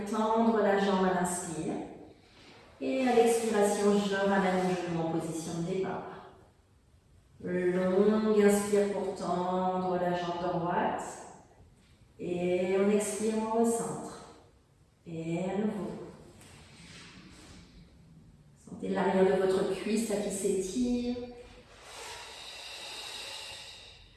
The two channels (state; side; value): identical; both; correlation 1.00